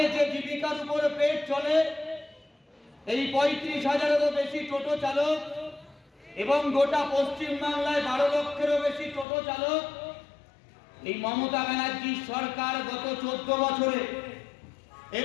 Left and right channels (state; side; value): drops out; right; at 9.2 s